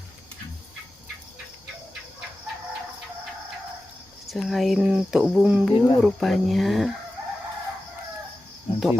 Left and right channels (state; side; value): normal; both; correlation 0.94